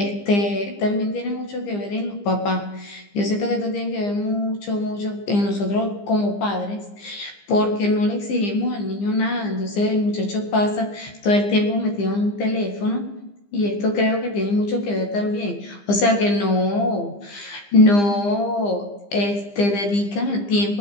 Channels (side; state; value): right; late; 15 ms